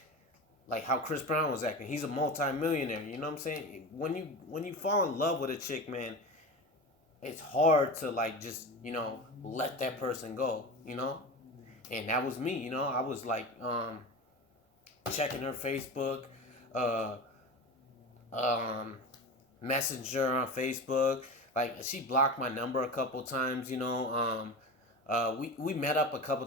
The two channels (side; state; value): both; normal; correlation 0.27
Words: how Chris Brown was acting. He's a multi-millionaire, you know what I'm saying? When you fall in love with a chick, man, it's hard to like just let that person go, and that was me, I was like checking her Facebook, uh, um, Messenger on Facebook. Like she blocked my number a couple times. We met up a couple